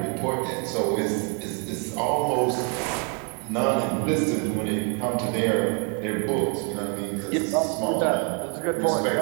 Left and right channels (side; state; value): left; quieter; 38.0 dB